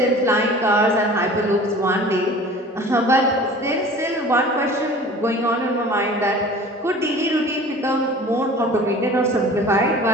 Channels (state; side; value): normal; both; correlation 0.43